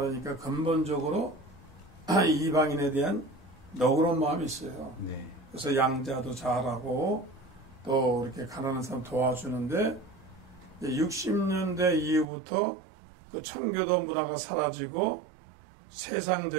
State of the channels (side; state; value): left; drops out; at 12.2 s